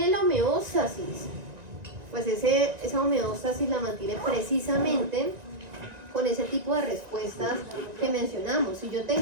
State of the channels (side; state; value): left; late; 1.9 ms